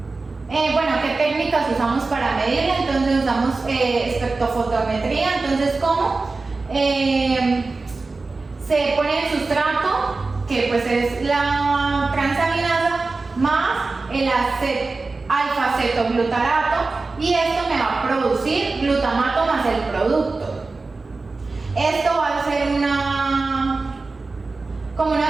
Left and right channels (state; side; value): quieter; left; 3.7 dB